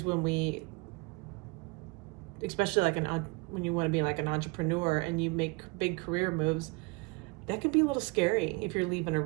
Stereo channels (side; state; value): left; quieter; 28.5 dB